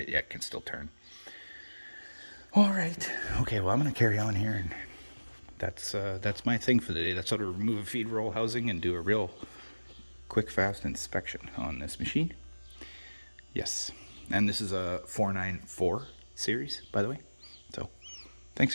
can still turn. All right, okay, well, I'm gonna carry on here, and that's my thing for the day. That's how to remove a feed roll housing and do a real quick, fast inspection on this machine. Yes, and this is a 494 series, by the way. So thanks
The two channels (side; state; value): both; inverted; correlation -1.00